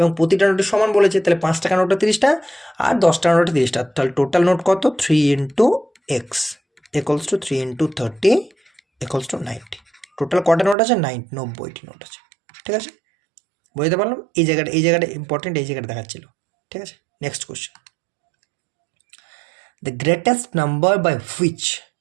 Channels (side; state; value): left; drops out; at 10.8 s